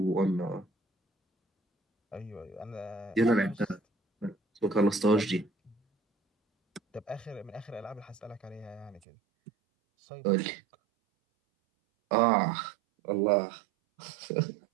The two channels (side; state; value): left; drops out; at 9.0 s